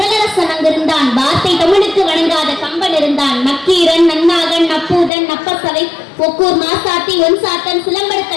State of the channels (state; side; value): drops out; right; at 5.1 s